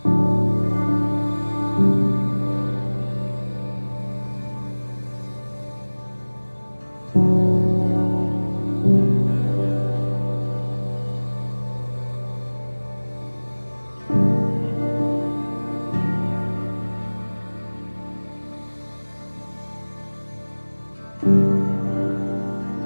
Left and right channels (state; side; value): inverted; both; correlation -1.00